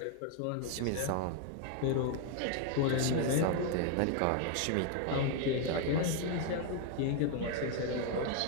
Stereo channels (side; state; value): both; different; correlation 0.01